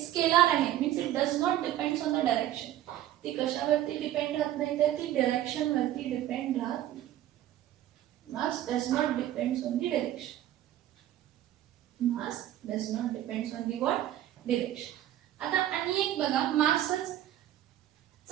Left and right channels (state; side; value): quieter; left; 12.9 dB